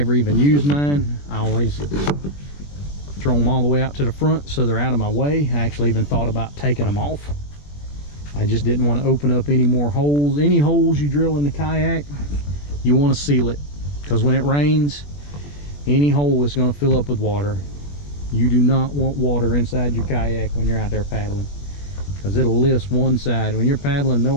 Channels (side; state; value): right; late; 21 ms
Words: even use mine. I always throw them all the way out to the front so they're out of my way. I actually even thought about taking them off. I just didn't want to open up any more holes. Any holes you drill in the kayak, you want to seal it, because when it rains, any hole is going to fill up with water. You do not want water inside your kayak when you're out there paddling, because it'll lift one side. When you're paddling,